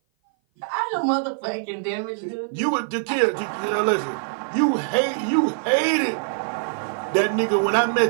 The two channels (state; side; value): silent; left; 57 dB below the other